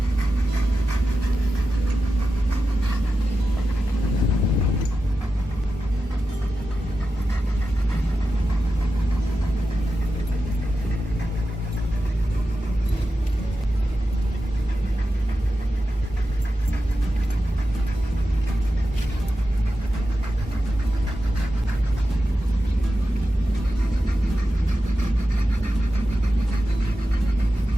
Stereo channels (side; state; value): both; normal; correlation 0.91